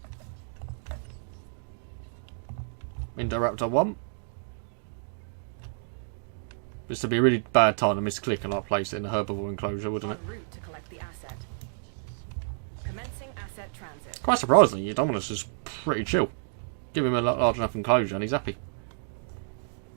Indoraptor 1. This would be a really bad time to misclick and like place it in a herbivore enclosure, wouldn't it? En route to collect the asset. Commencing asset transit. Quite surprisingly, Dominus is pretty chill. Give him a large enough enclosure and he's happy.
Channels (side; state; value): left; silent; digital silence